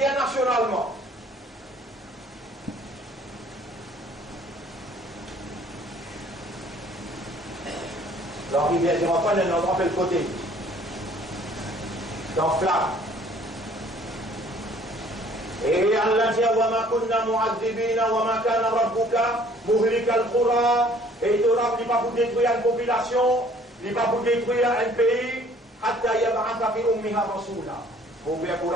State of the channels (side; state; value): both; normal; correlation 0.56